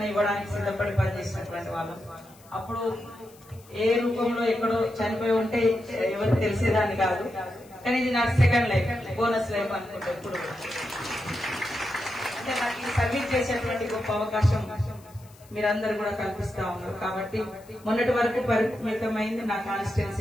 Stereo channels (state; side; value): noise; left; hiss, 26 dB below the sound